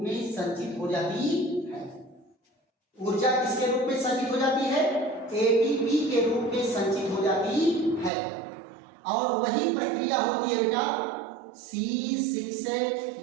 में संचित हो जाती है। ऊर्जा किसके रूप में संचित हो जाती है? ATP के रूप में संचित हो जाती है। और वही प्रक्रिया होती है बेटा C6H12O6,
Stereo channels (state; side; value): drops out; left; at 8.1 s